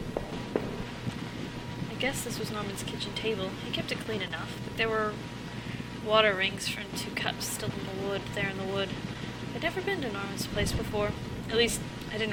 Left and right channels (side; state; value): both; identical; correlation 1.00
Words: I guess this was Norman's kitchen table. He kept it clean enough, but there were water rings from 2 cups still in the wood, there in the wood. I'd never been to Norman's place before. At least, I